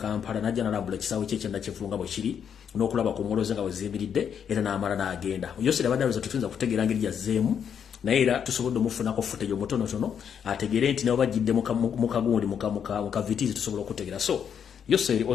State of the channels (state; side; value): quieter; right; 7.9 dB